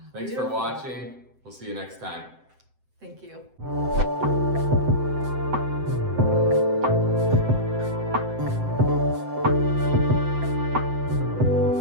Thanks for watching. We'll see you next time. Thank you.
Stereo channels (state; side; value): late; left; 7.8 ms